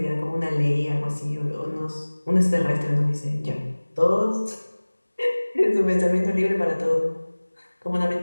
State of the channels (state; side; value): inverted; both; correlation -1.00